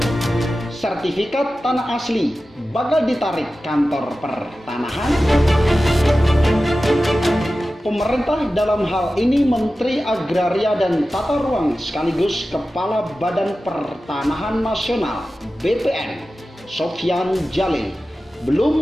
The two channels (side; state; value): both; normal; correlation 0.94